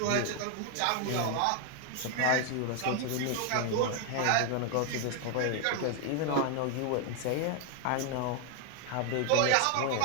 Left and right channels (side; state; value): both; different; correlation 0.00